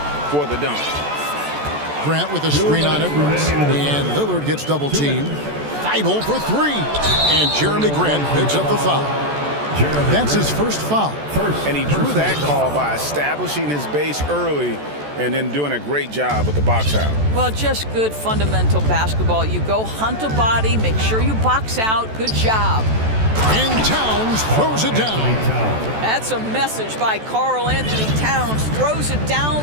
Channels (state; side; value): late; left; 14 ms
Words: for the dunk. Grant with a screen on Edwards, and Lillard gets double teamed. Thibault for 3, and Jeremy Grant picks up the foul. That's his first foul. And he drew that call by establishing his base early and then doing a great job with the box out. Well, just good fundamental basketball. You go hunt a body, make sure you box out. Good job. And Towns throws it down. That's a message by Karl Anthony Towns. Throws it